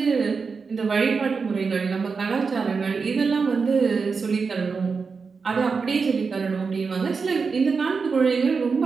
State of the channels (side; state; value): left; quieter; 5.0 dB